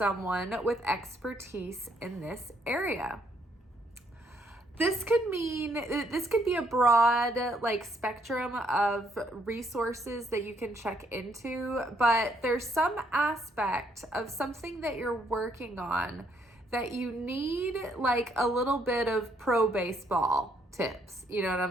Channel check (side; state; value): both; normal; correlation 0.70